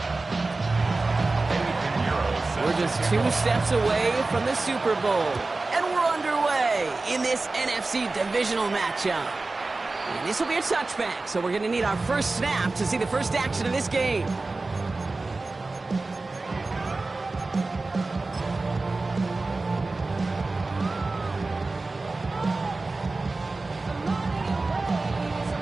We're just 2 steps away from the Super Bowl, and we're underway in this NFC divisional matchup. And this will be a touchback, so we're going to need our first snap to see the first action of this game.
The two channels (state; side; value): quieter; left; 3.4 dB